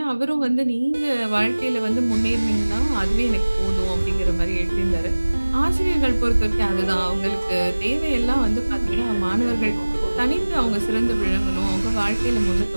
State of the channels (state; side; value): inverted; both; correlation -1.00